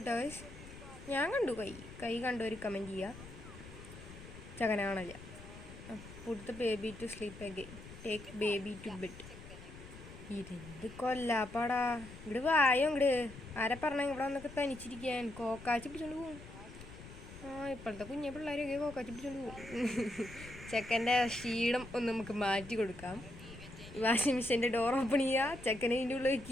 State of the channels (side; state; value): left; noise; rumble, 15 dB below the sound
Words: ഗൈസ്. ഞാൻ കണ്ടു കൈ കണ്ടു. ഒരു കമൻറ്റ് ചെയ്യുക. ചെക്കനെ കാണില്ല. Put the baby to sleep again. Take baby to bed. ഇതെന്ത് കൊല്ലാപ്പാടാ. ഇവിടെ വായോ ഇങ്ങട്. ആരെ പറഞ്ഞ ഇവിടെ വന്നൊക്കെ തനിച്ചിരിക്കാൻ കോക്കാച്ചി പിടിച്ചോണ്ട് പോകും. ഇപ്പോഴത്തെ കുഞ്ഞെ പിള്ളേരൊക്കെ കോക്കാച്ചി പിടിച്ചോണ്ട് പോകും. ചെക്കൻ്റെ ക്ഷീണം ഒന്ന് നമുക്ക് മാറ്റി കൊടുക്കാം. വാഷിംഗ് മെഷീൻ്റെ ഡോർ ഓപ്പൺ ചെയ്യുക, ചെക്കനെ ഇതിൻ്റെ ഉള്ളിൽ